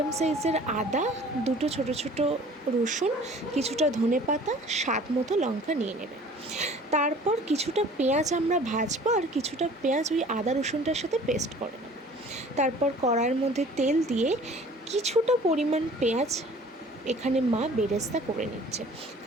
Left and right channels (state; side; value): normal; both; correlation 0.49